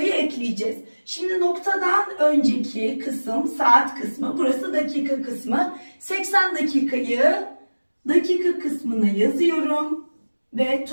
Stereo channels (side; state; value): both; inverted; correlation -1.00